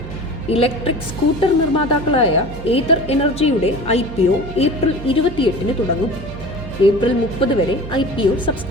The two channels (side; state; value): right; noise; hum, 12 dB below the sound